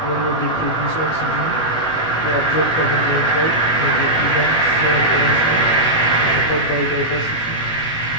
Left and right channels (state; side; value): late; right; 19 ms